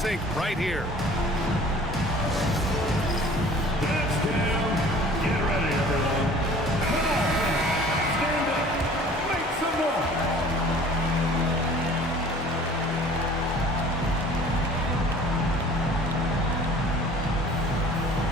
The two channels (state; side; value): normal; both; correlation 0.48